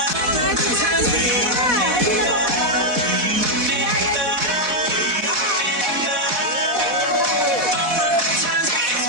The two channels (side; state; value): left; late; 4.1 ms